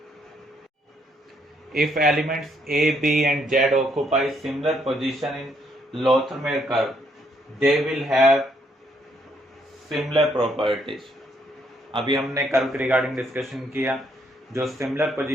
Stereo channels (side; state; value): both; normal; correlation 0.71